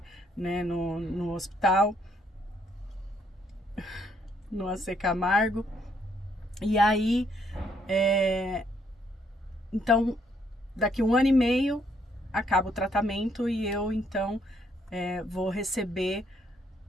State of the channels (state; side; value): normal; both; correlation 0.70